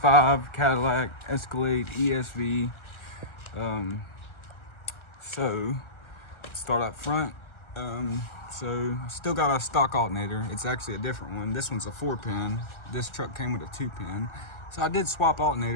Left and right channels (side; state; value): right; late; 1.3 ms